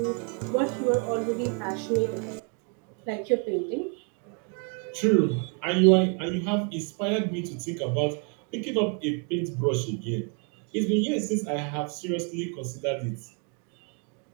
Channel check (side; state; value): left; quieter; 38.9 dB